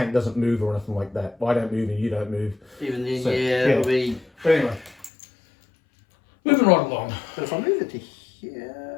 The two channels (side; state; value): right; drops out; at 5.1 s